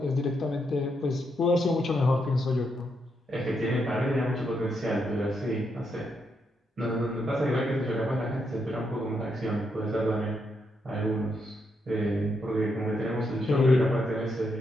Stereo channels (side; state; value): both; normal; correlation 0.80